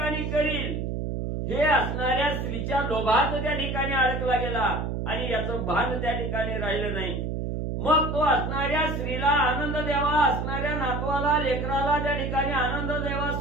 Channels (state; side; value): noise; right; hum, 2 dB below the sound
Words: करील, हे असणाऱ्या स्त्रीच्या लोभात त्या ठिकाणी अडकला गेला आणि याचं भान त्या ठिकाणी राहिलं नाही। मग तो असणाऱ्या स्त्रीला आनंद द्यावा, असणाऱ्या नातवाला लेकराला त्या ठिकाणी आनंद द्यावा,